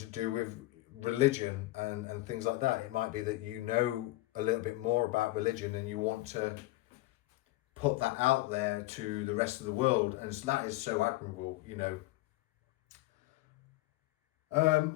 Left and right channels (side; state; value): right; quieter; 18.7 dB